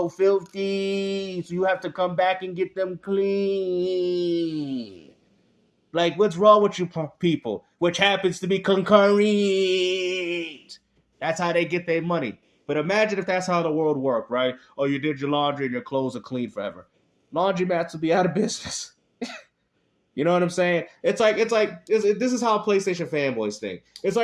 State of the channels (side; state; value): both; identical; correlation 1.00